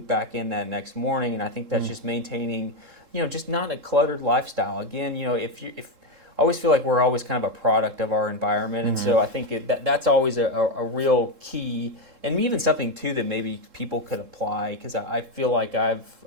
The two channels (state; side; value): late; left; 3.7 ms